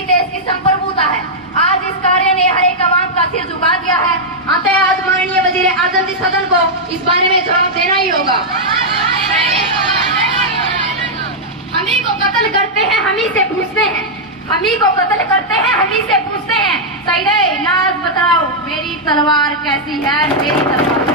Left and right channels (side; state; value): both; normal; correlation -0.05